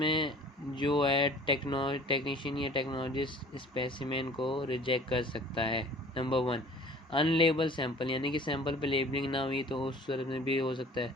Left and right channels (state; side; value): normal; both; correlation 0.49